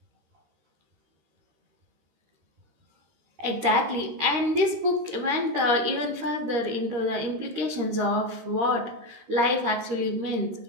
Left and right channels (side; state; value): left; late; 13 ms